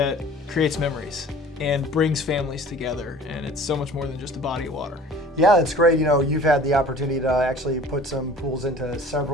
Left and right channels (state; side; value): normal; both; correlation 0.46